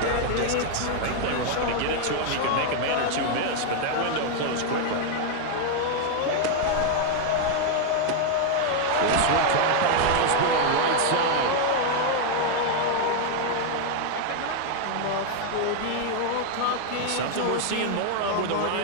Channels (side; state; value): both; different; correlation 0.00